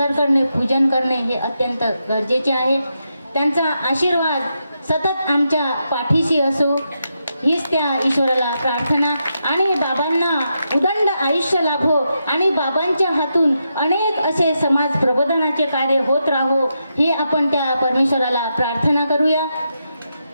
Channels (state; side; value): inverted; both; correlation -0.84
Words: करणे, पूजन करणे हे अत्यंत गरजेचे आहे. त्यांचा आशीर्वाद सतत आमच्या पाठीशी असो हीच त्या ईश्वराला प्रार्थना. आणि बाबांना उदंड आयुष्य लाभो आणि बाबांच्या हातून अनेक असे समाज प्रबोधनाचे कार्य होत राहो ही आपण त्या परमेश्वराला प्रार्थना करूया.